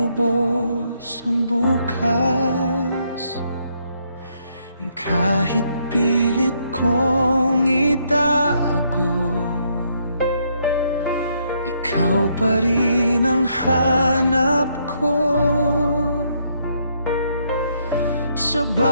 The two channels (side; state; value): both; inverted; correlation -0.73